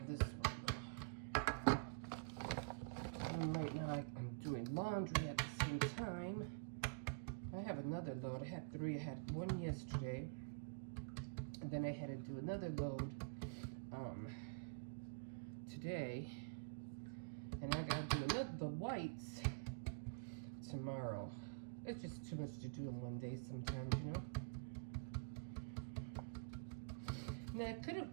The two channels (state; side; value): quieter; left; 37.2 dB